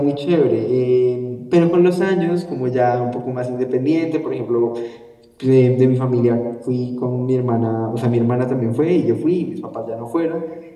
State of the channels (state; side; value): identical; both; correlation 1.00